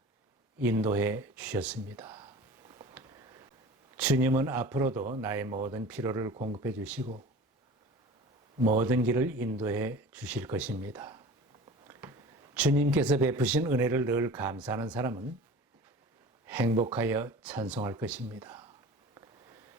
인도해 주셨습니다. 주님은 앞으로도 나의 모든 필요를 공급해 주시고 모든 길을 인도해 주실 것입니다. 주님께서 베푸신 은혜를 늘 감사하는 사람은 행복하여 찬송할 것입니다.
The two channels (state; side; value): normal; both; correlation 0.39